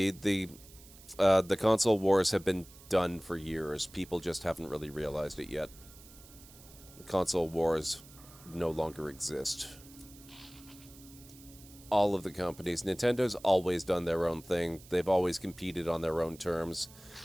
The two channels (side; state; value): right; noise; hiss, 21 dB below the sound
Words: console wars have been done for years. People just haven't really realized it yet. The console wars no longer exist. All of the companies. Nintendo's always done their own thing. They've always competed on their own terms.